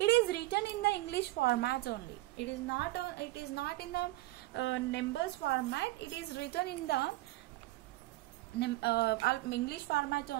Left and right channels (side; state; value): left; quieter; 18.6 dB